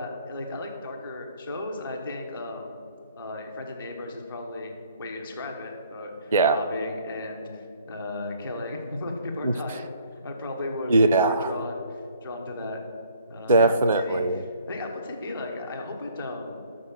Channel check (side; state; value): both; inverted; correlation -0.60